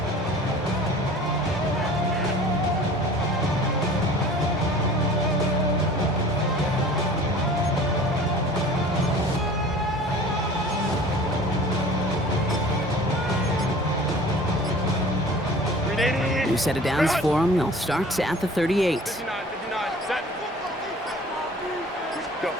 New set of downs for him. They'll start at the 38.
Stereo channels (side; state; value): both; normal; correlation 0.45